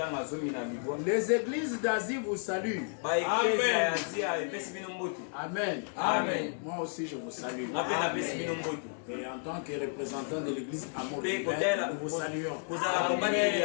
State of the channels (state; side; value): silent; right; 55 dB below the other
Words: Les églises d'Asie vous saluent. Amen. Amen. Amen. Moi aussi je vous salue. Amen. Et en tant que représentant de l'église Amour Divin, nous vous saluons.